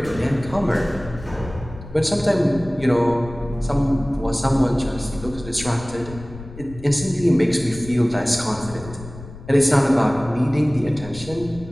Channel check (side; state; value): left; noise; rumble, 15 dB below the sound